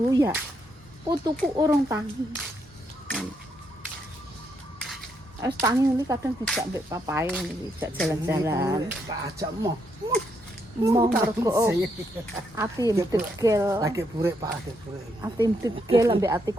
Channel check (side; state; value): both; normal; correlation 0.77